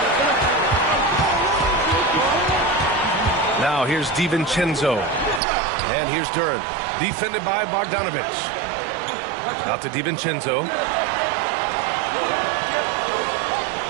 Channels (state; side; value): drops out; left; at 5.4 s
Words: Now here's DiVincenzo. And here's Duren. Defended by Bogdanovic. Out to DiVincenzo.